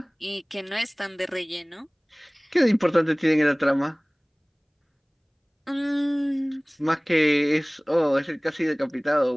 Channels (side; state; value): both; identical; correlation 1.00